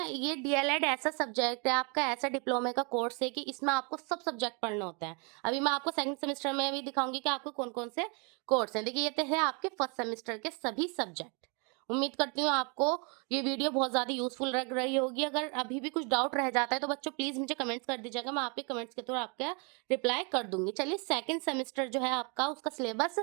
ये डीएलएड ऐसा सब्जेक्ट है आपका, ऐसा डिप्लोमे का कोर्स है कि इसमें आपको सब सब्जेक्ट पढ़ने होते हैं। अभी मैं आपको सेकंड सेमेस्टर में भी दिखाऊंगी कि आपको कौन कौन से कोर्स हैं। देखिए ये तो है आपके फर्स्ट सेमेस्टर के सभी सब्जेक्ट। उम्मीद करती हूँ आपको ये वीडियो बहुत ज़्यादा यूजफुल लग रही होगी। अगर अभी भी कुछ डाउट रह जाता है तो बच्चों प्लीज़ मुझे कमेंट्स कर दीजिएगा, मैं आपके कमेंट्स के थ्रू आपका रिप्लाई कर दूंगी। चलिए सेकंड सेमेस्टर जो है आपका, उसका सिलेबस,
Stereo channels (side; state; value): left; quieter; 34.1 dB